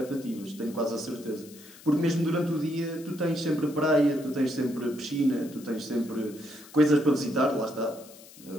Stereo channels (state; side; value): noise; left; hiss, 20 dB below the sound